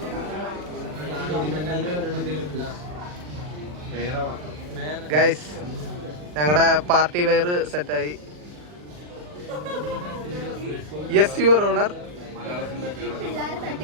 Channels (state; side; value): late; left; 40 ms